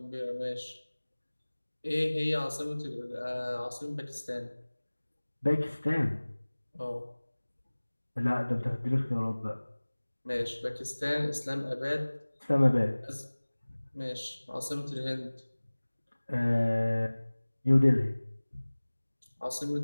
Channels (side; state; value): both; inverted; correlation -1.00